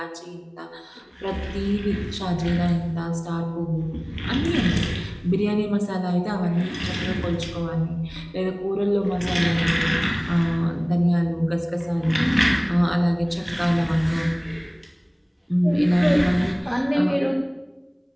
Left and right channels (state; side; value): identical; both; correlation 1.00